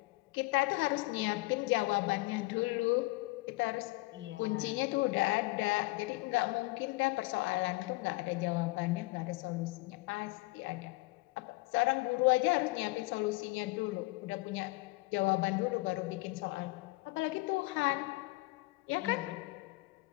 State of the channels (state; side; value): quieter; right; 22.5 dB